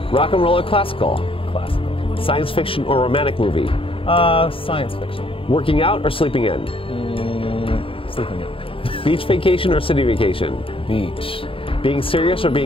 Rock and roll or classical? Classical. Science fiction or romantic movie? Science fiction. Working out or sleeping in? Sleeping in. Beach vacation or city vacation? Beach. Being serious or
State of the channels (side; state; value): right; late; 0.26 ms